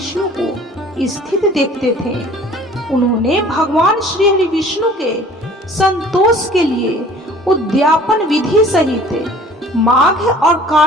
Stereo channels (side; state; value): both; normal; correlation 0.49